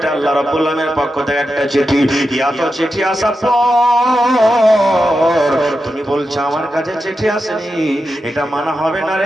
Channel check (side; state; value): both; normal; correlation 0.89